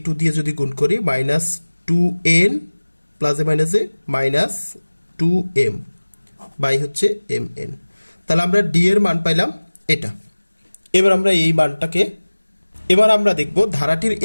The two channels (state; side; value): inverted; both; correlation -1.00